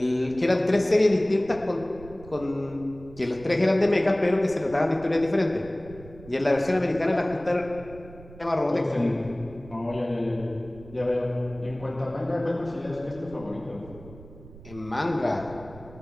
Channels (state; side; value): noise; right; rumble, 18 dB below the sound